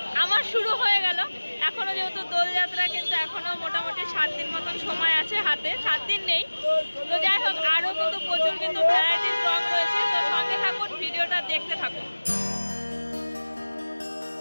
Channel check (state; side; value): inverted; both; correlation -1.00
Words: আমার শুরু হয়ে গেল। এখনো যেহেতু দোলযাত্রা কিন্তু এখনো মোটামুটি 7 দিন মতন সময় আছে হাতে, 7 দিন নেই। তো যাই হোক আরো কিন্তু প্রচুর কিন্তু ভ্যারাইটিস রং রয়েছে। তো সঙ্গে থাকুন, ভিডিওটা দেখতে থাকুন।